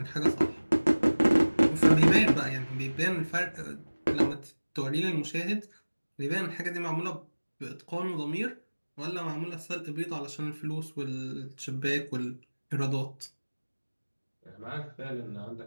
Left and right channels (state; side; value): inverted; both; correlation -1.00